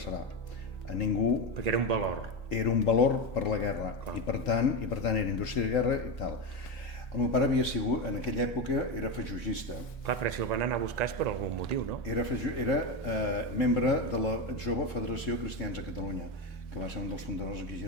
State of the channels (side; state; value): right; late; 1.4 ms